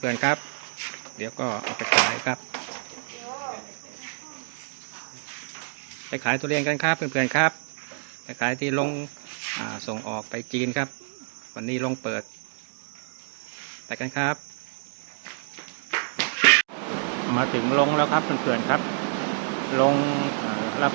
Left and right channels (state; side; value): silent; left; digital silence